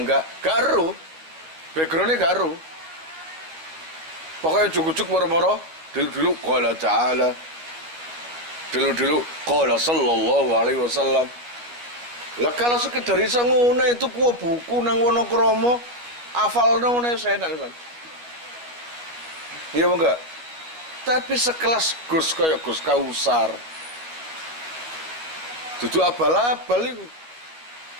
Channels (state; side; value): late; left; 12 ms